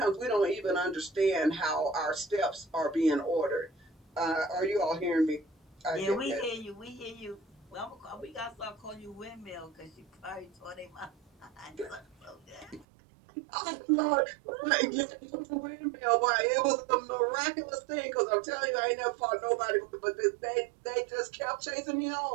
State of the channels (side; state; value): left; drops out; at 12.9 s